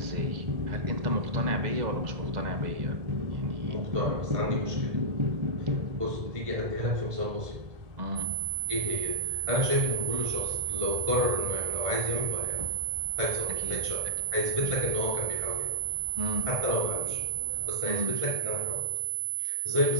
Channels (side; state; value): left; late; 1.7 ms